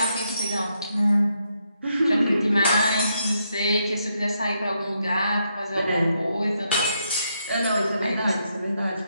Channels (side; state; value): both; inverted; correlation -0.78